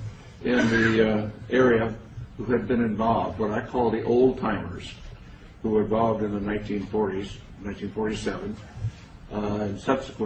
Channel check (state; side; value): identical; both; correlation 1.00